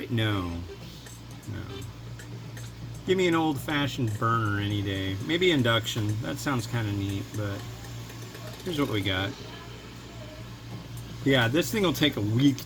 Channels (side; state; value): both; identical; correlation 1.00